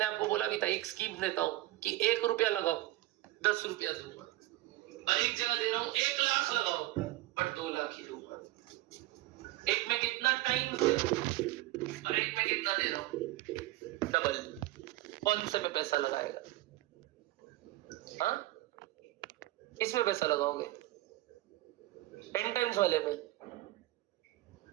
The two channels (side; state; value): left; quieter; 17.3 dB